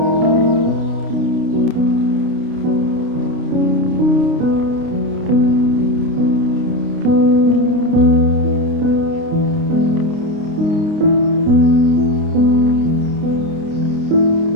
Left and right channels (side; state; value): left; late; 29 ms